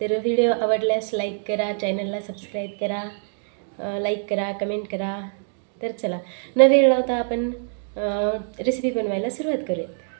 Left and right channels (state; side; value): silent; left; digital silence